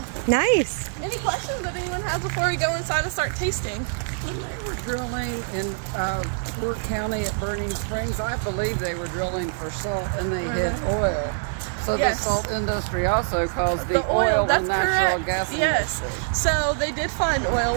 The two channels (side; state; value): left; silent; digital silence